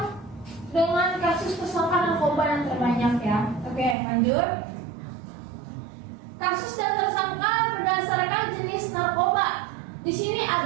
dengan kasus tersangka narkoba yang terbanyak ya. Oke, lanjut. Kasus dan tersangka berdasarkan jenis narkoba. Di sini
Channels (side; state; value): left; drops out; at 4.0 s